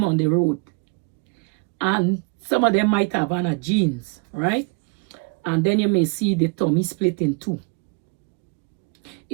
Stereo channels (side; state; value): left; quieter; 32.8 dB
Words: on the road and some of them might have on a jeans, right? And then you may see the tummy split in two.